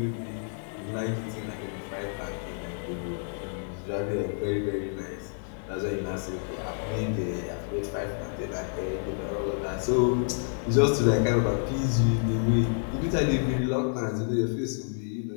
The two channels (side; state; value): right; silent; digital silence